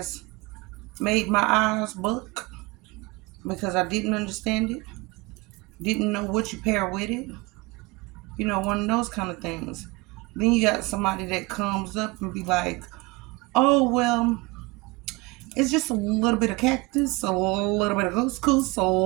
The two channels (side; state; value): left; quieter; 24.5 dB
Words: made my eyes buck because I didn't understand it, didn't know what you pair with it, you know, one of those kind of things. Then you got somebody that comes up and be like, oh, well, it's just a little bit of cactus, a little bit of couscous, a